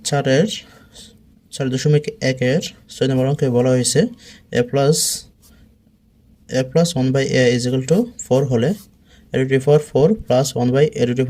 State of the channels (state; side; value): identical; both; correlation 1.00